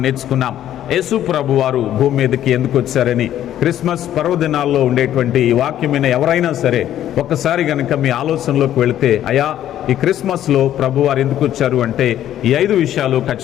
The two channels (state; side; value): quieter; right; 11.7 dB